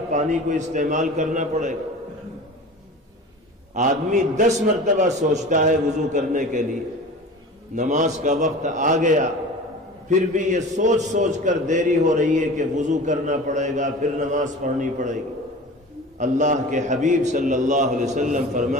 پانی کو استعمال کرنا پڑے گا۔ آدمی 10 مرتبہ سوچتا ہے وضو کرنے کے لیے، نماز کا وقت آ گیا پھر بھی یہ سوچ سوچ کر دیری ہو رہی ہے کہ وضو کرنا پڑے گا، پھر نماز پڑھنی پڑے گی۔ اللہ کے حبیب صلی اللہ علیہ وسلم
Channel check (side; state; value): both; normal; correlation 0.37